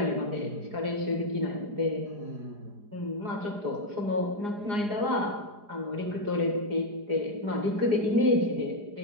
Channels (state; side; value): late; left; 4.9 ms